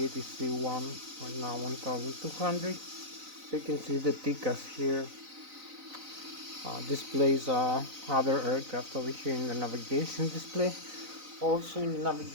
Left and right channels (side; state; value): left; late; 4.0 ms